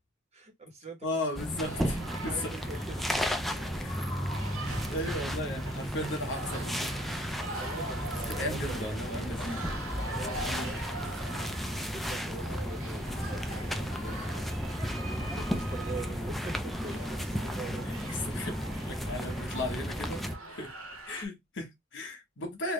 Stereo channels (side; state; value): both; normal; correlation 0.64